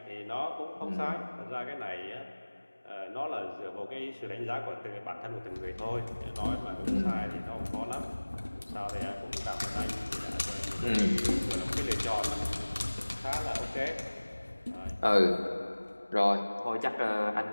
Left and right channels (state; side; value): inverted; both; correlation -1.00